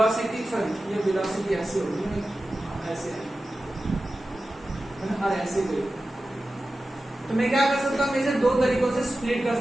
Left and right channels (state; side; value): normal; both; correlation 0.94